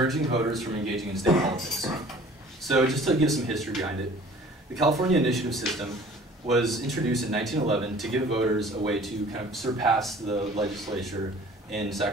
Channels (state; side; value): normal; both; correlation 0.49